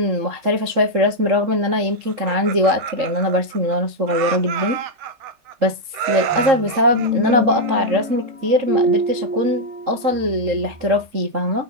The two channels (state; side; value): late; left; 3.4 ms